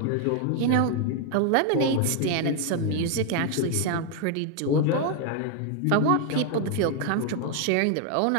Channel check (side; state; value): both; different; correlation 0.01